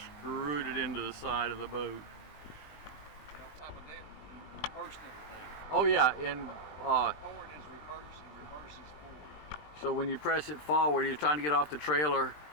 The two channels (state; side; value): late; right; 20 ms